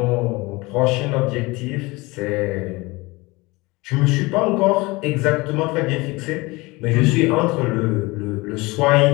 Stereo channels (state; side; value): quieter; right; 23.1 dB